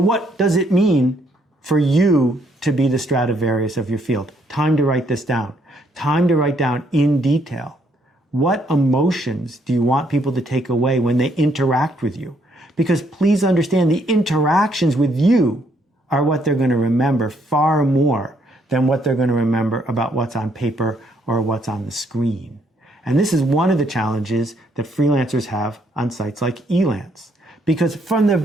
does it mean for you to be the Stradivarius of your field? Time to write this down. Time to write down in detail. What emotions do you want people to take away when they interact with you? Because please understand, the interactions with you are what they're going to remember far more than what they're going to remember about what's on paper or what's on the screen. And this is one of the challenges that freelancers have on sites like Elance. Because from the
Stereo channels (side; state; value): both; normal; correlation 0.70